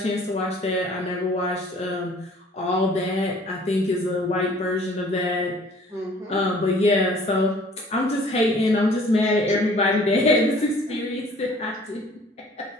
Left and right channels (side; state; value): both; normal; correlation 0.53